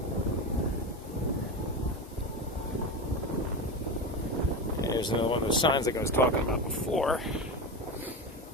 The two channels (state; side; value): normal; both; correlation 0.20